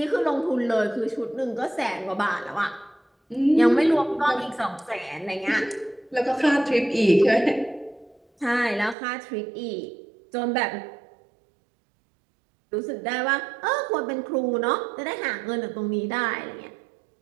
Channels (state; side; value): drops out; left; at 9.0 s